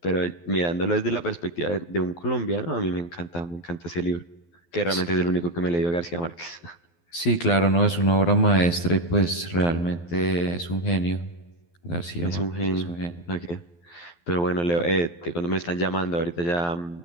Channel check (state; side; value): late; right; 12 ms